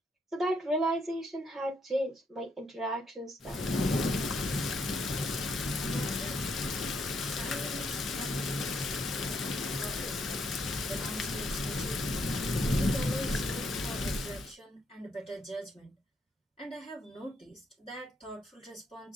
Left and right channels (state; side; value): normal; both; correlation 0.74